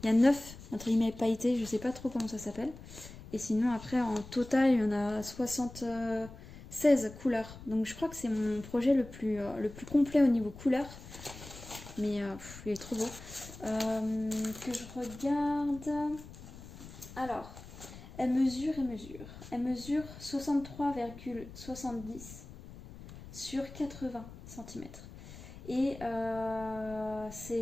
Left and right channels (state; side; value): noise; left; rumble, 15 dB below the sound